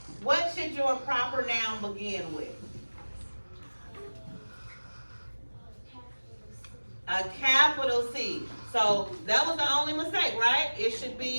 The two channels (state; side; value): inverted; both; correlation -1.00